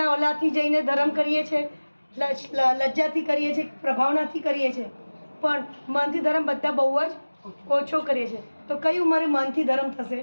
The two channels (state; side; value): inverted; both; correlation -1.00